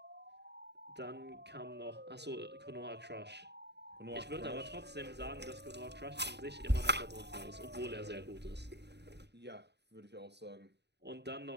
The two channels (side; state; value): left; late; 0.49 ms